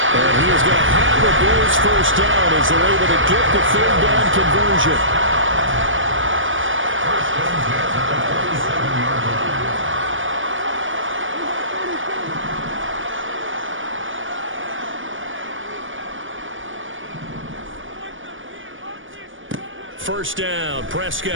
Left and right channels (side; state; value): left; late; 0.57 ms